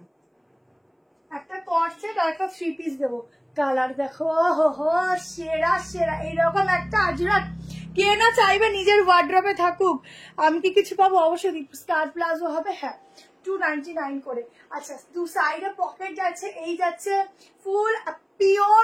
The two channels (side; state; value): both; identical; correlation 1.00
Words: একটা কোয়ার্সেট আর একটা 3 পিস দেবো। কালার দেখো, হো সেরা সেরা। এইরকম একটা আজরাক কে না চাইবে নিজের ওয়ার্ড্রপে থাকুক। আমি কি কিছু পাবো? অবশ্যই স্কার্ট প্লাজো হবে। হ্যাঁ, 299 করে। আচ্ছা, দু সাইডে পকেট যাচ্ছে, এই যাচ্ছে ফুল